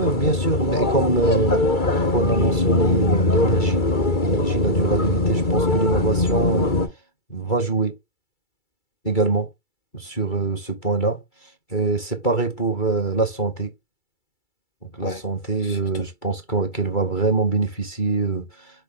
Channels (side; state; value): right; late; 2.3 ms